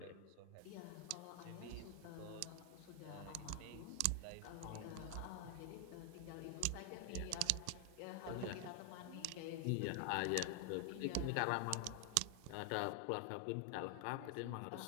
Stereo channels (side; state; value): both; different; correlation 0.00